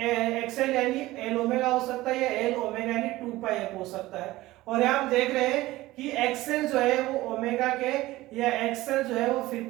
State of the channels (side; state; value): left; quieter; 17.8 dB